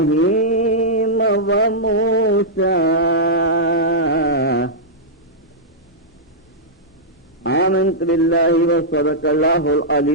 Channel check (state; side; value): normal; both; correlation -0.10